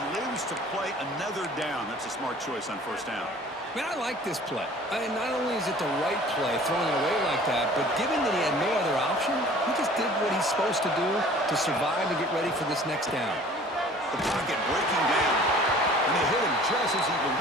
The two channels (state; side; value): normal; both; correlation 0.49